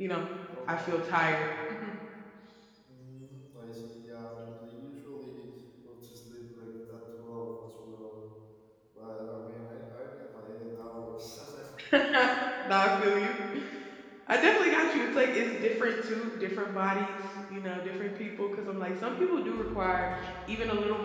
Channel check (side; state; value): both; identical; correlation 1.00